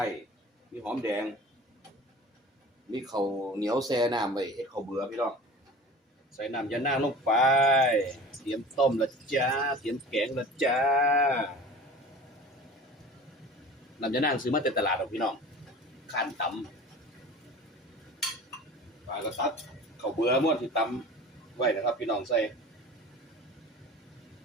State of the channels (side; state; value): both; normal; correlation 0.39